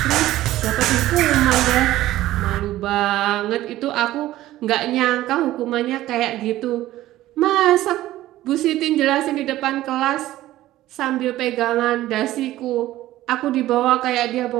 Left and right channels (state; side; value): quieter; left; 15.2 dB